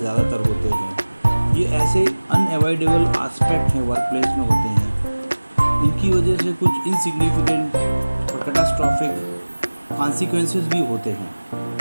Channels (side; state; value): both; inverted; correlation -1.00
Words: होते हैं। ये ऐसे अनएवॉइडेबल एस्पेक्ट हैं वर्क प्लेस में होते हैं। इनकी वजह से कुछ इनसिग्निफिकेंट और कैटास्ट्रॉफिक कॉन्सिक्वेंसेस भी होते हैं।